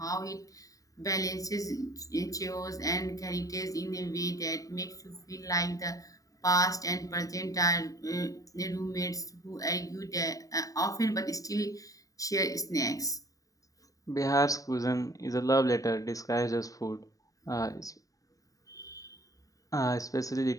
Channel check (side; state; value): right; late; 0.16 ms